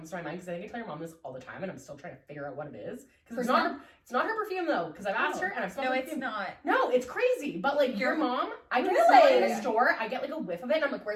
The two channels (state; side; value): identical; both; correlation 1.00